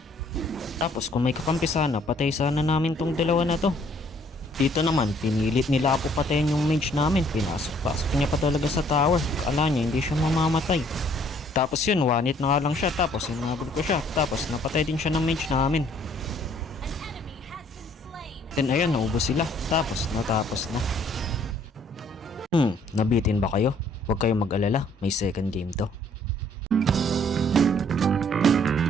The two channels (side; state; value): both; normal; correlation 0.61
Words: Tapos kung may kakampi sana, patay sana namin tong dalawa na to. Dito naman, pinilit nila ako patayin yung mage namin. Pinasok-pasok niya pa talaga sa tower. Akala niya hindi siya mamamatay. Tapos yun, one hit na nga lang siya. Tapos hinabol ko siya. Tapos napatay din siya ng mage namin. Then ayun, naubos sila. Tapos natapos na. Nabitin ba kayo? Huwag kayong mag-alala. May second game to.